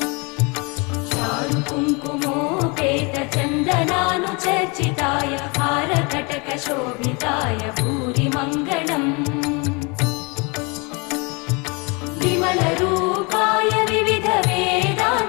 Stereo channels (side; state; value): right; quieter; 30.1 dB